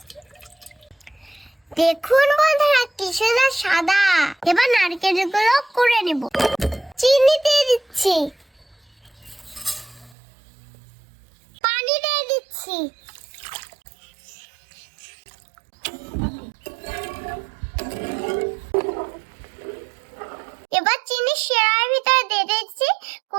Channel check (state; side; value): drops out; left; at 10.2 s